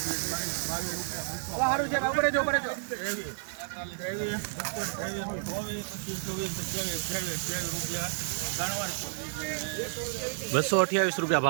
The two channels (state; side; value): silent; left; 57 dB below the other